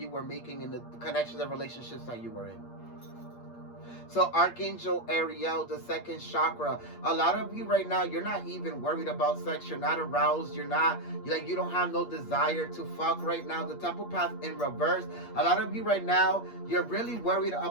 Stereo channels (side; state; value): right; late; 8.5 ms